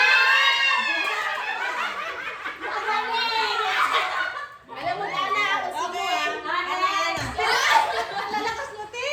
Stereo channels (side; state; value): both; identical; correlation 1.00